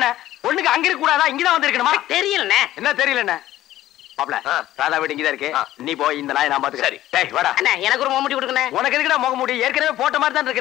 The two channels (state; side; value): quieter; right; 14.2 dB